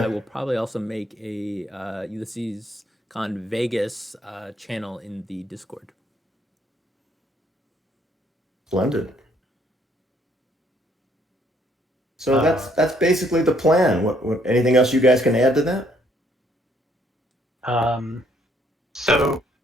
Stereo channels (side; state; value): both; normal; correlation 0.67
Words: will probably also make a Ulysses Con Vegas channel in the Discord. Splendid. So that's basically the plan. What anything else you guys can add to that? So,